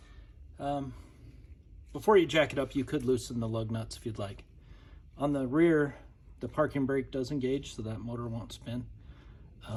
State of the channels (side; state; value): both; identical; correlation 1.00